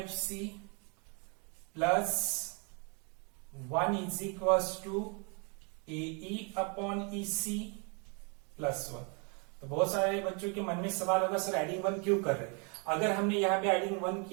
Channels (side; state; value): left; quieter; 35.1 dB